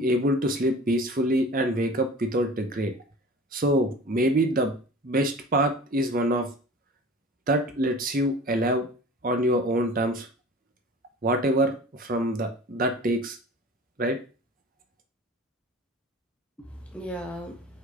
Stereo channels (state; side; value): normal; both; correlation 0.41